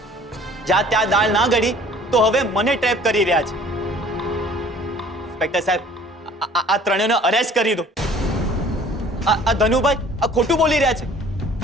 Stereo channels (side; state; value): both; normal; correlation 0.52